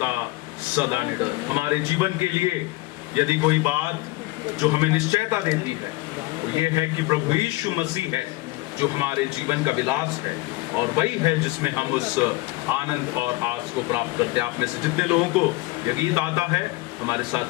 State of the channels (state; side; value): quieter; right; 21.1 dB